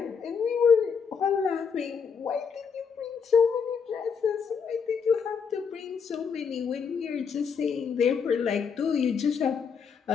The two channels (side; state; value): right; quieter; 6.3 dB